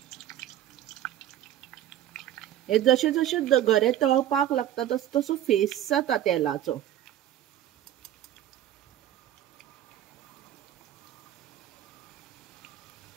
हे जशे जशे गरे तळपाक लागता तसो तसो फेस जाता तेलाचो।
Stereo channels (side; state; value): left; quieter; 11.9 dB